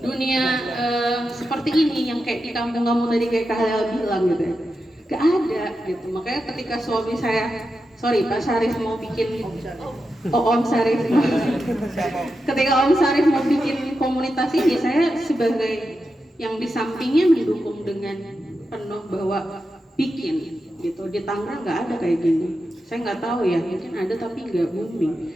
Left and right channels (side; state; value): both; normal; correlation 0.89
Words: dunia seperti ini yang kayak di kampung kamu tadi kayak Kak Halil bilang gitu ya, gak ada gitu. Makanya ketika suami saya, Pak Syarif mau bikin Om Syarif ketika Om Syarif mau bikin komunitas ini, saya sebagai yang di sampingnya mendukung dengan penuh bahwa bikin gitu. Di Tangerang nggak ada kayak gini. Saya nggak tahu ya, mungkin ada tapi nggak booming.